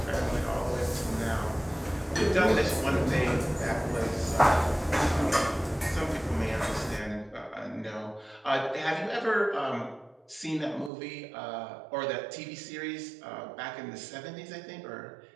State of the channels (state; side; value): drops out; left; at 10.9 s